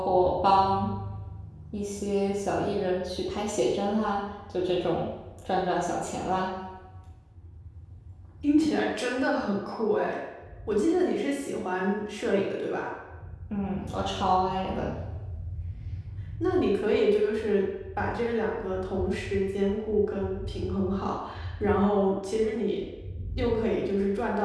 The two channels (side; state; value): both; identical; correlation 1.00